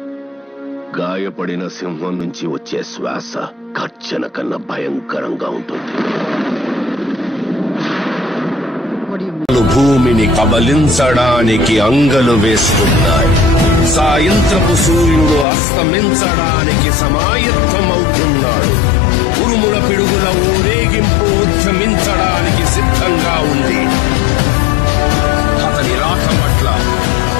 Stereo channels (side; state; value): right; drops out; at 15.5 s